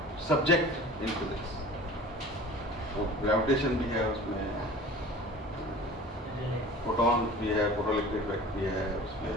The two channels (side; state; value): both; normal; correlation 0.42